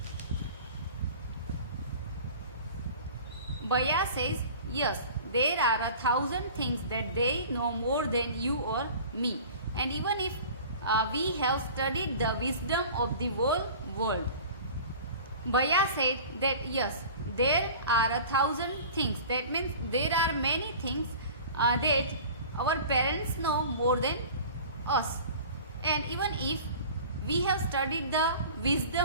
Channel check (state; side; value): inverted; both; correlation -0.41